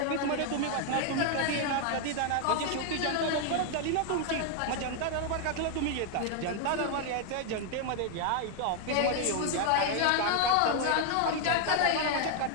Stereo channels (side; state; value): both; different; correlation 0.00